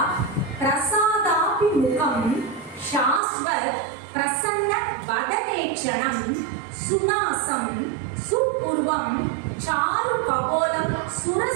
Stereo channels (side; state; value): left; drops out; at 3.2 s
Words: பிரசாதாபி முகம் சாஸ்வத் பிரசன்ன வதனேட்சணம் சுனாசம் சுபூர்வம் சாரு கபோலம்